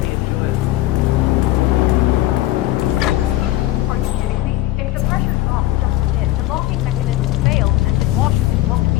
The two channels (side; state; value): right; quieter; 16.1 dB